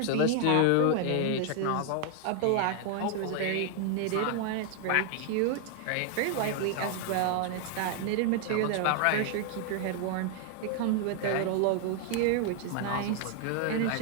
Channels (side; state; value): both; different; correlation 0.00